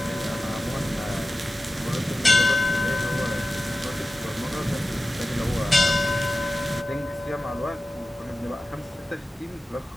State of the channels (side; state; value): both; normal; correlation 0.95